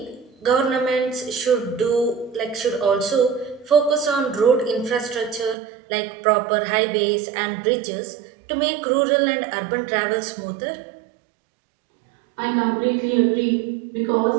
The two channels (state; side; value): drops out; left; at 5.6 s